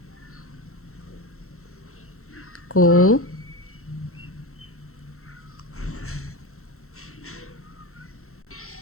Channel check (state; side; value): late; right; 0.63 ms